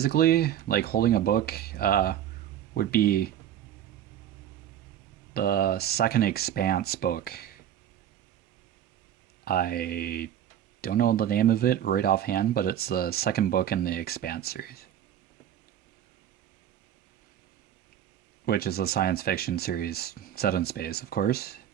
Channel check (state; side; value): quieter; left; 10.6 dB